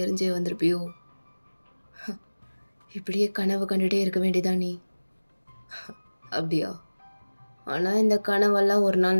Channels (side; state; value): both; inverted; correlation -1.00